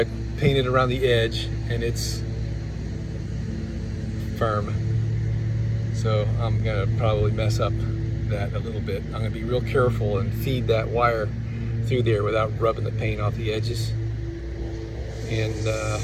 painted around the edge and it's firm. So I'm gonna probably mess up that a little bit. I'm gonna be real careful and feed that wire through there without rubbing the paint off the edges, and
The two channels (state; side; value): identical; both; correlation 1.00